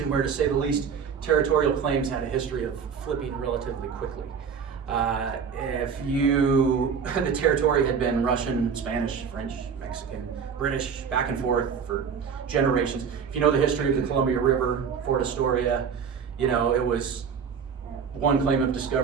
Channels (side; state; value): left; quieter; 6.6 dB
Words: where, to say the least, territorial claims had a history of flipping relatively quickly. The territory had been Russian, Spanish, French, Mexican, British, back and forth for generations. If you know the history of the Columbia River, Fort Astoria, you know, it was one claim of